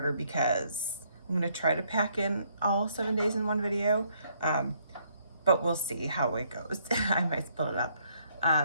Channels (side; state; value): both; inverted; correlation -0.69